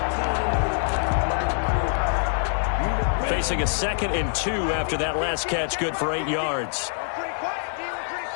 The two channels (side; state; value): right; silent; digital silence